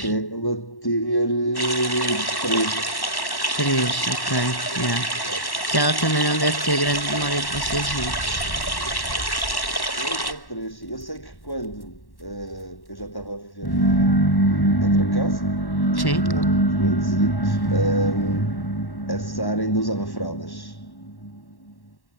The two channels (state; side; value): late; right; 1.1 ms